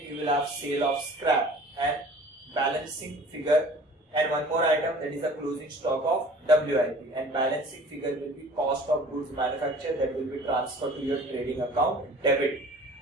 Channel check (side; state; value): both; normal; correlation 0.47